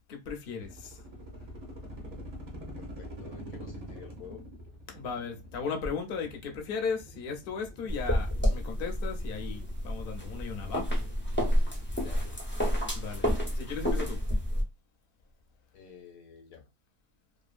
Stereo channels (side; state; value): both; normal; correlation 0.67